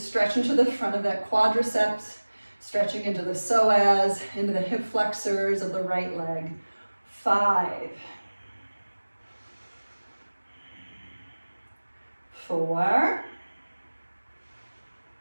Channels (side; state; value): both; inverted; correlation -1.00